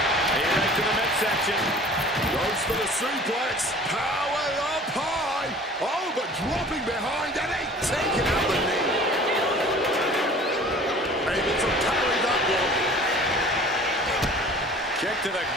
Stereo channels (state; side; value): normal; both; correlation 0.46